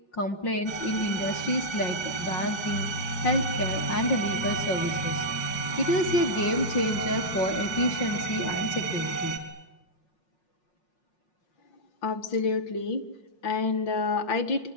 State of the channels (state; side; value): late; right; 5.6 ms